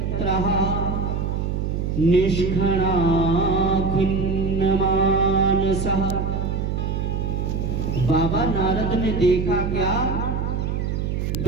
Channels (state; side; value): noise; right; hum, 1 dB below the sound